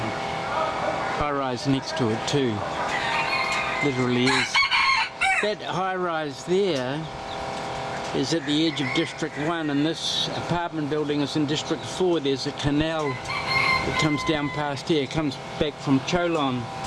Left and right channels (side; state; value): both; identical; correlation 1.00